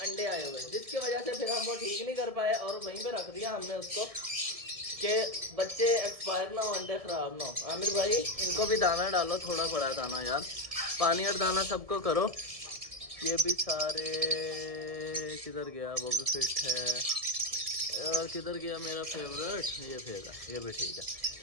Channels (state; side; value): late; left; 1.7 ms